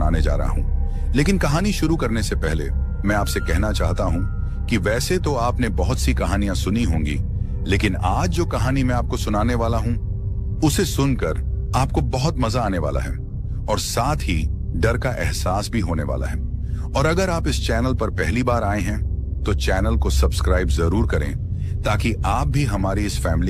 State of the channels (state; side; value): identical; both; correlation 1.00